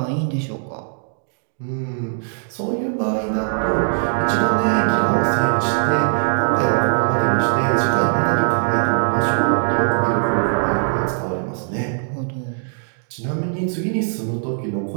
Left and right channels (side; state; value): left; silent; digital silence